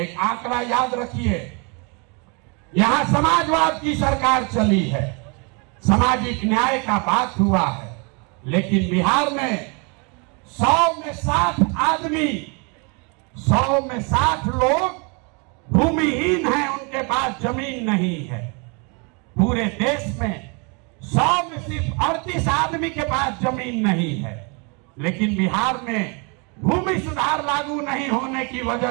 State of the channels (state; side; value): quieter; left; 33.1 dB